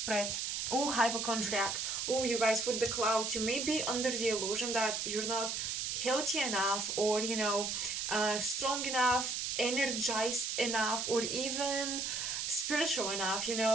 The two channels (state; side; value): noise; right; hiss, 1 dB below the sound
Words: oh, hypochondriac. Oh, you guys, with the clouds, you may be under the illusion that you're not healthy enough, or, you know, strong enough, energized enough, or even spiritual enough. You